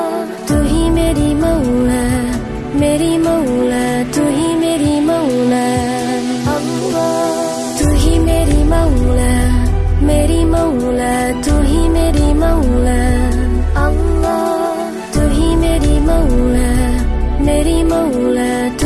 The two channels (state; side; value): identical; both; correlation 1.00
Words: तू ही मेरी मौला, मेरी मौला, तू ही मेरी मौला अल्लाह। तू ही मेरी मौला, मेरी मौला, तू ही मेरी मौला अल्लाह। तू ही मेरी मौला, मेरी मौला,